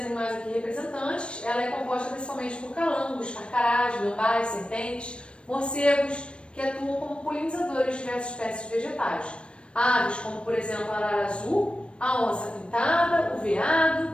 aqui representantes. Ela é composta principalmente por calangos, carcarás, gambás, serpentes, morcegos, que atuam como polinizadores de diversas espécies vegetais. Aves como, por exemplo, a arara azul, a onça pintada, o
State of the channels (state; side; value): late; right; 0.058 ms